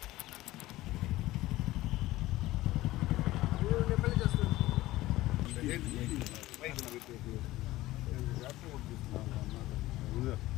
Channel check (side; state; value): right; quieter; 17.2 dB